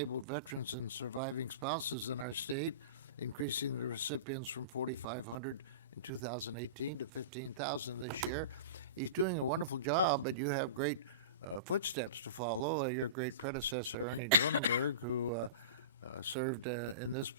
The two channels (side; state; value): both; inverted; correlation -0.32